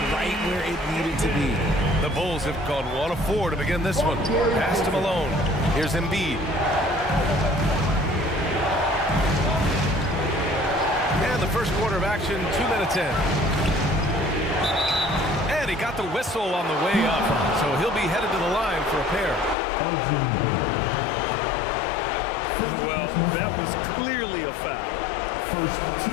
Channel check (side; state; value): right; drops out; at 19.6 s